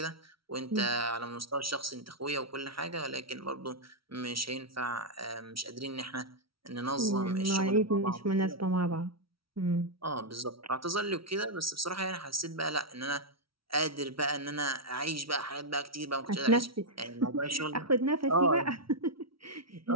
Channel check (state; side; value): late; left; 0.75 ms